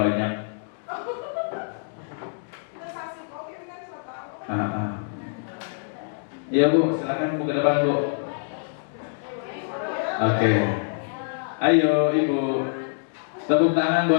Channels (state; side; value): silent; right; digital silence